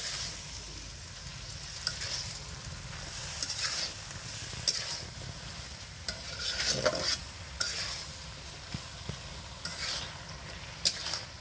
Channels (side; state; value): both; identical; correlation 1.00